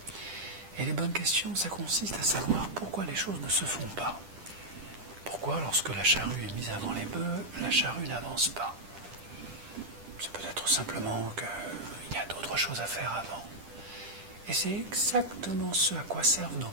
Et les bonnes questions, ça consiste à savoir pourquoi les choses ne se font pas. Pourquoi, lorsque la charrue est mise avant les bœufs, la charrue n'avance pas? C'est peut-être simplement qu'il y a d'autres choses à faire avant. Et c'est exactement ce à quoi servent nos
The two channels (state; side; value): late; left; 10 ms